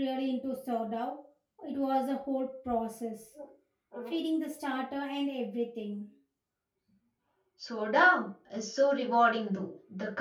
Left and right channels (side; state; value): both; identical; correlation 1.00